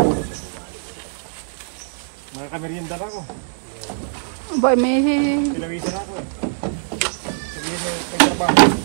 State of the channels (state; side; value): silent; left; 64 dB below the other